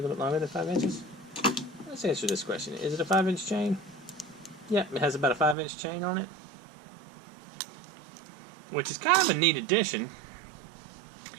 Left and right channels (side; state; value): left; drops out; at 5.6 s